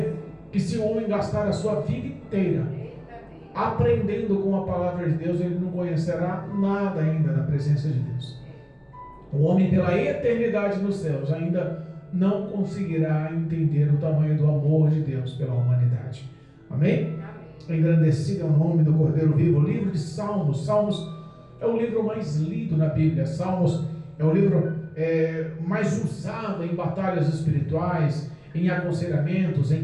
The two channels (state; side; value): identical; both; correlation 1.00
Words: que se o homem gastar a sua vida inteira aprendendo com a palavra de Deus, ele não conhecerá nada ainda da presença de Deus. O homem, pela eternidade nos céus, ainda não conseguirá entender o tamanho do amor de Deus pela humanidade. Amém? Engrandecido é o nome do Cordeiro Vivo. O livro de Salmos. Salmos é o livro mais lido na Bíblia. Salmos é o livro mais usado em batalhas espirituais, em aconselhamentos, em